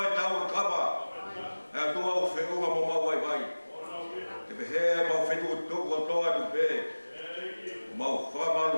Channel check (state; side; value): inverted; both; correlation -1.00